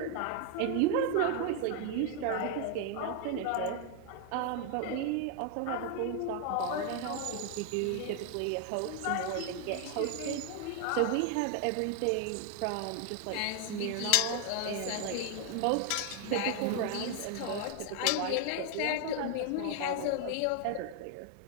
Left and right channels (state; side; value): different; both; correlation 0.00